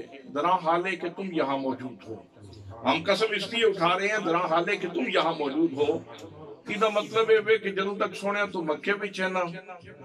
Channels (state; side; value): identical; both; correlation 1.00